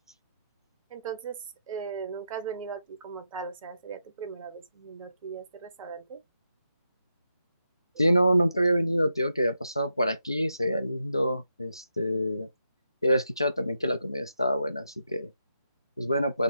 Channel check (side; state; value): both; inverted; correlation -0.84